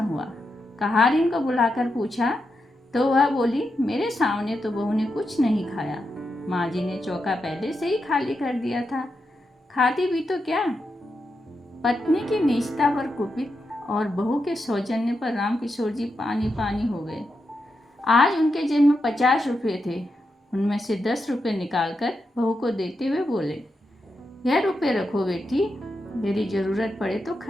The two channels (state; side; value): normal; both; correlation 0.86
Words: कहारिन को बुलाकर पूछा तो वह बोली, मेरे सामने तो बहू ने कुछ नहीं खाया। माँ जी ने चौका पहले से ही खाली कर दिया था। खाती भी तो क्या। पत्नी की नीचता पर कुपित और बहू के सौजन्य पर रामकिशोर जी पानी पानी हो गए। आज उनके जेब में 50 रुपये थे। उनमें से 10 रुपये निकालकर बहू को देते हुए बोले, यह रुपये रखो बेटी, यदि जरूरत पड़े तो